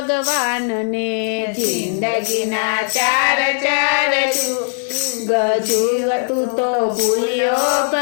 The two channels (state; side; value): silent; right; 66 dB below the other